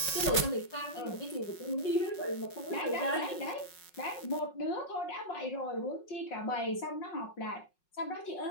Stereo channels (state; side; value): late; right; 5.5 ms